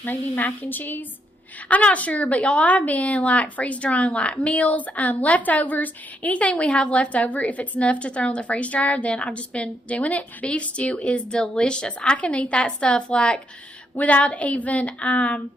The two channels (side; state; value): both; normal; correlation 0.77